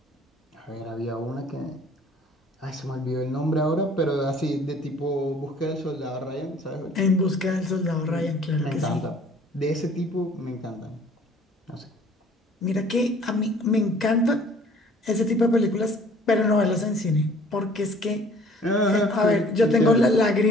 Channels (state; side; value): normal; both; correlation 0.54